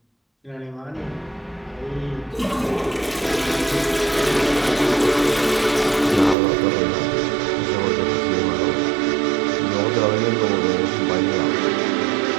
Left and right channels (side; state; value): left; drops out; at 6.4 s